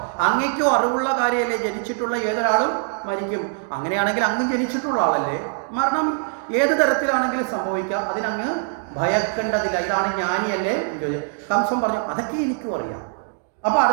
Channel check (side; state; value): left; silent; digital silence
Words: അങ്ങയ്ക്കും അറിവുള്ള കാര്യമല്ലേ, ജനിച്ചിട്ടുള്ള ഏതൊരാളും മരിക്കും. അങ്ങനെയാണെങ്കിൽ അങ്ങ് ജനിച്ചിട്ടുള്ള ആളല്ലേ, മരണം ഏത് തരത്തിലാണെങ്കിലും സംഭവിക്കാം, അതിനങ്ങ് ഭയക്കേണ്ടതില്ല. ഇതാണ് ജ്ഞാനിയല്ലേ? കംസൻ പറഞ്ഞു, അതൊക്കെ എനിക്കും അറിയാം. അപ്പൊ